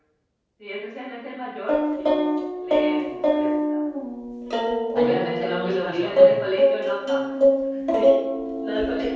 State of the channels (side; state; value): both; identical; correlation 1.00